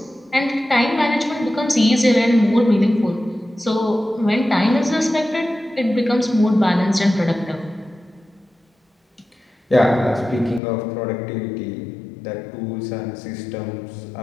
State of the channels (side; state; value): right; drops out; at 10.6 s